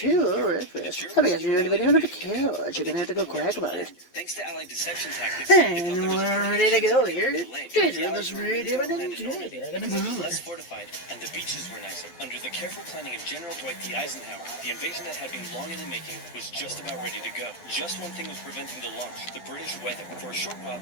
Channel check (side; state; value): right; late; 12 ms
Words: of Wreckfest. I guess you're in the video on the couch. You're gonna have to go quack about it. Thanks to Allied deception tactics, And we're ready to go here. Let's read it less fortified, and the beaches were nicer. Under the careful planning of General Dwight D. Eisenhower, the invasion that had been long in the making was just about ready to go. Just one thing was preventing the launch: the British weather. For a short while,